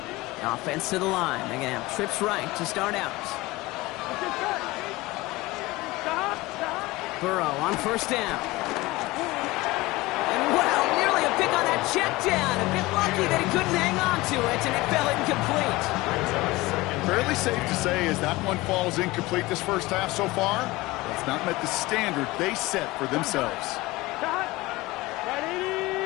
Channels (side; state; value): right; quieter; 20.5 dB